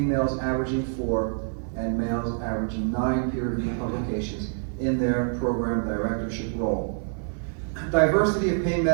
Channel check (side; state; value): left; silent; 61 dB below the other